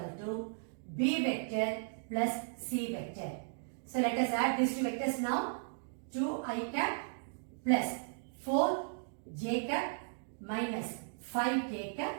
to B vector plus C vector. So let us add these two vectors now. 2i cap plus 4j cap minus 5k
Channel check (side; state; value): left; silent; digital silence